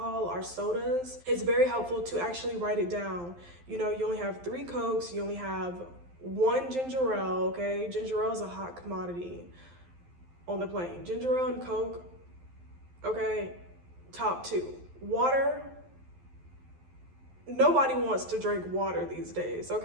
or sodas. It's very helpful to actually write it down. You know, you only have 3 Cokes, you only have 1 ginger ale, okay? Ginger ale is a hot commodity on the plane. Ginger ale and Coke, okay, top 2. Water, nobody wants to drink water these days,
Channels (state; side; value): late; left; 11 ms